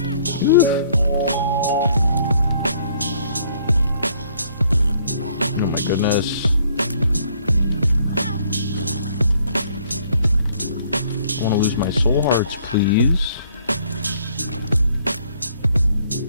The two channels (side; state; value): both; inverted; correlation -0.64